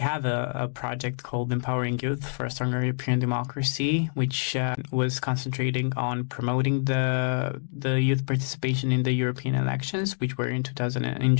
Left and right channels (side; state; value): right; silent; digital silence